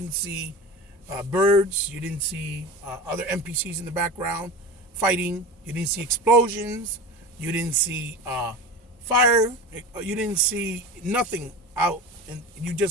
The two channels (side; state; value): both; normal; correlation 0.29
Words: see birds. You didn't see other NPCs in the background fighting. You didn't see explosions. You didn't see fire. You didn't see nothing out. And you